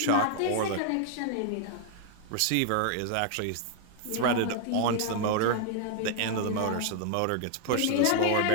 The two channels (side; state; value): both; different; correlation 0.00